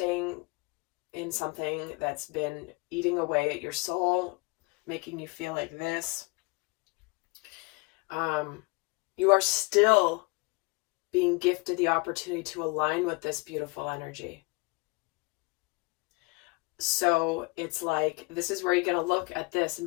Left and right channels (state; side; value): quieter; right; 26.8 dB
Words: in something that's been eating away at your soul, making you feel like this, you are still being gifted the opportunity to align with this beautiful energy. So it's like, this is where you're going to look at this and